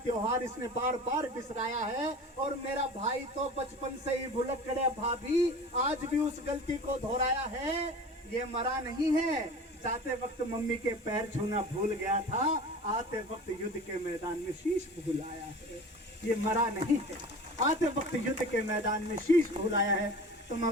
त्योहार इसने बार बार बिसराया है। और मेरा भाई तो बचपन से ही भुलक्कड़ है भाभी, आज भी उस गलती को दोहराया है। ये मरा नहीं है, जाते वक्त मम्मी के पैर छूना भूल गया था, आते वक्त युद्ध के मैदान में शीश भूल आया है। ये मरा नहीं है, आते वक्त युद्ध के मैदान में शीश भूल आया है। तो मैं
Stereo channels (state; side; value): normal; both; correlation 0.38